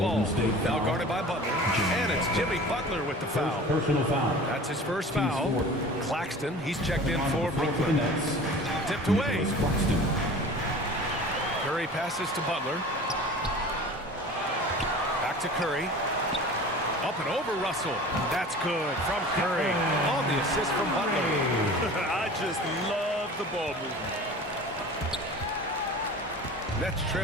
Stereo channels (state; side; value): normal; both; correlation 0.40